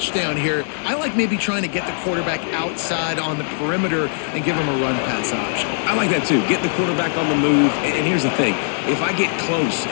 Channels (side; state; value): right; silent; digital silence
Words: here. I like maybe trying to get the quarterback outside on the perimeter and give him a run-pass option. I like that too. Get the quarterback on the move. And here's the thing. If I get close